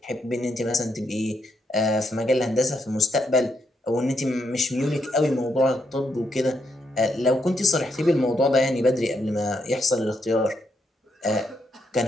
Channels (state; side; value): normal; both; correlation 0.78